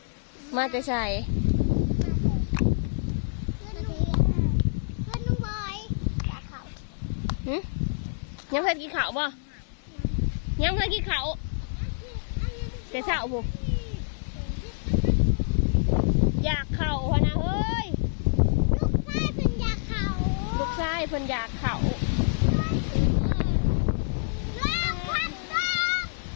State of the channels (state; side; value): silent; right; digital silence